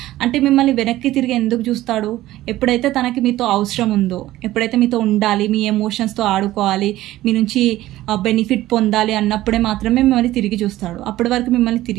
అంటే మిమ్మల్ని వెనక్కి తిరిగి ఎందుకు చూస్తాడు? ఎప్పుడైతే తనకి మీతో అవసరం ఉందో, ఎప్పుడైతే మీతో ఉండాలి, మీ ఎమోషన్స్తో ఆడుకోవాలి, మీ నుంచి బెనిఫిట్ పొందాలి అన్నప్పుడే మాత్రమే మిమ్మల్ని తిరిగి చూస్తాడు. అప్పటి వరకు మిమ్మల్ని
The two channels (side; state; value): left; quieter; 15.6 dB